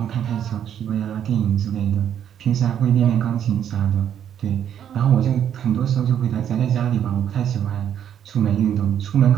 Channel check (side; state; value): left; quieter; 9.5 dB